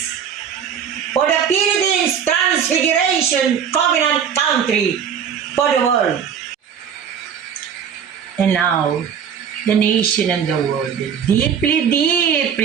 for the Philippines Transfiguration Covenant Country for the world. And now, the nation and the world are deeply,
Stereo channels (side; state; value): left; quieter; 7.8 dB